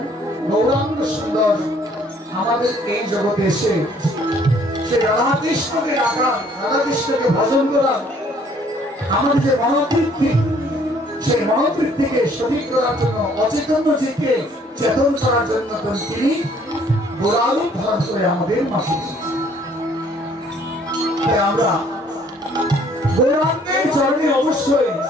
গৌরাঙ্গ সুন্দর আমাদের এই জগতে এসে সে রাধা কৃষ্ণকে রাখা রাধা কৃষ্ণকে ভজন করা আমাদের যে মনোবৃত্তি সেই মনোবৃত্তিকে সঠিক করার জন্য অচেতন জীবকে চেতন করার জন্য তিনি গোরারূপ ধারণ করে আমাদের মাঝে আমরা গৌরাঙ্গের চরণে অবশ্যই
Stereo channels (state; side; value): normal; both; correlation 0.61